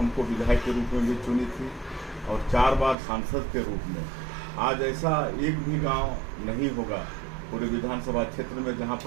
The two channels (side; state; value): left; drops out; at 3.0 s